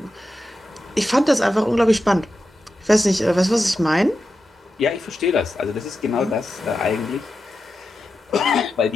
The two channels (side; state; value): both; normal; correlation 0.90